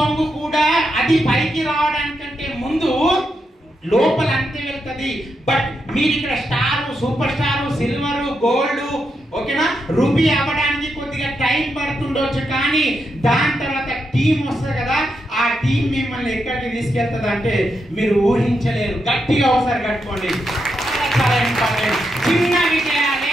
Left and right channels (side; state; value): both; normal; correlation 0.84